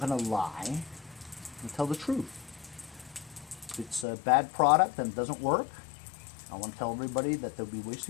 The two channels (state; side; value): drops out; right; at 4.0 s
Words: to lie and tell the truth. If it's a bad product and it doesn't work, I want to tell everybody that they'll be